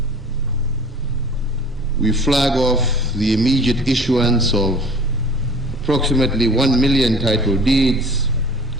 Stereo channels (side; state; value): both; normal; correlation 0.46